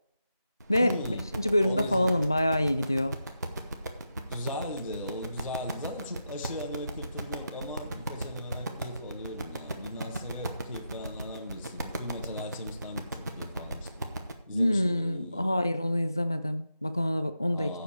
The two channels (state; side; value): inverted; both; correlation -0.86